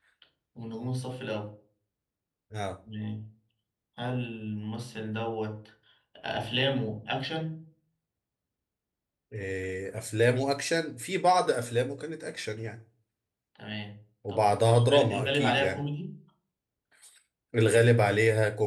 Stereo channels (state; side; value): identical; both; correlation 1.00